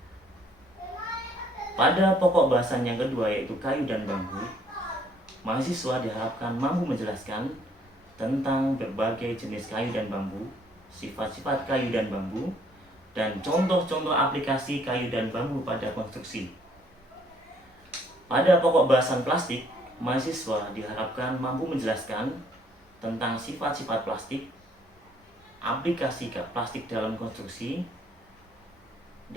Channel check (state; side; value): normal; both; correlation 0.64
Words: Pada pokok bahasan yang kedua, yaitu kayu dan bambu, mahasiswa diharapkan mampu menjelaskan tentang berbagai jenis kayu dan bambu, sifat-sifat kayu dan bambu, dan contoh-contoh aplikasi kayu dan bambu pada konstruksi. Pada pokok bahasan plastik, mahasiswa diharapkan mampu menjelaskan tentang sifat-sifat plastik, aplikasi plastik dalam konstruksi,